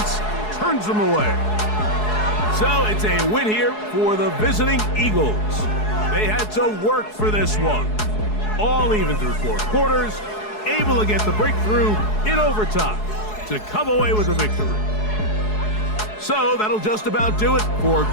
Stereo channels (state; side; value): late; right; 4.7 ms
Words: turns them away. So it's a win here for the visiting Eagles. They had to work for this one. All even through 4 quarters, able to get the breakthrough in overtime to come away with a victory. So that'll just about do it for